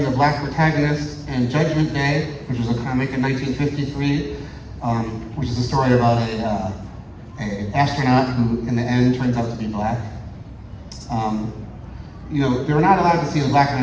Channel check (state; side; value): identical; both; correlation 1.00